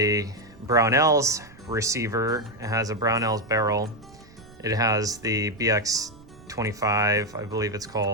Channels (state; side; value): noise; right; rumble, 23 dB below the sound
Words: Brownells receiver. It has a Brownells barrel. It has the BX25, I believe it's